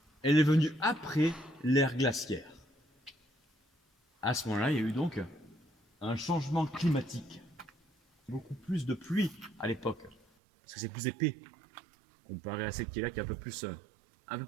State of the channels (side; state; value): left; drops out; at 10.2 s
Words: elle est venue après l'ère glaciaire. À ce moment-là, il y a eu donc un changement climatique. Beaucoup plus de pluie à l'époque, parce que c'est plus épais, comparé à celle qui est là, qui est un peu plus